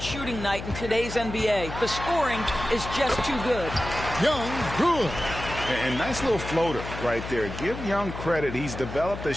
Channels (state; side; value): noise; left; hum, 9 dB below the sound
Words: shooting night in today's NBA. The scoring is just too good. Young, good. And nice little floater right there. Give Young credit. He's developed the